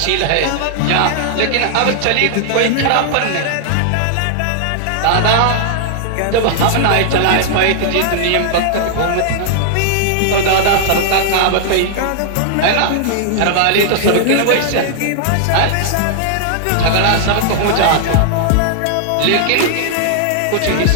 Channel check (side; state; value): both; different; correlation -0.01